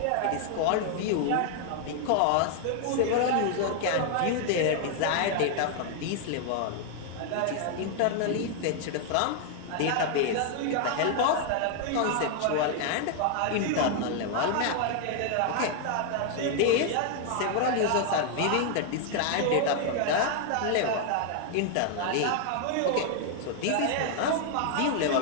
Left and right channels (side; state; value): both; different; correlation 0.00